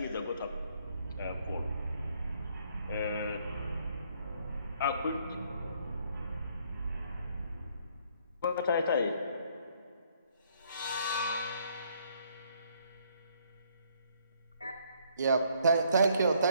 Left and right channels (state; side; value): inverted; both; correlation -0.67